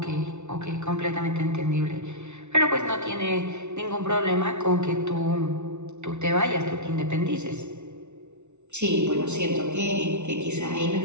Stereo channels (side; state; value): left; late; 0.82 ms